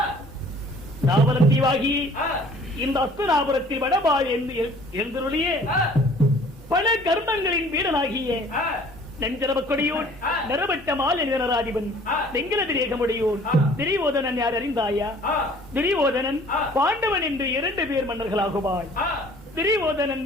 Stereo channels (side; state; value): both; normal; correlation 0.53